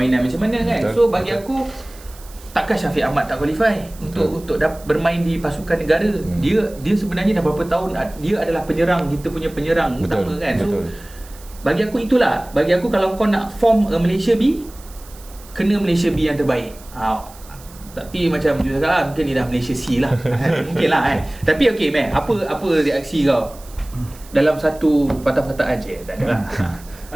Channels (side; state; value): right; noise; hiss, 22 dB below the sound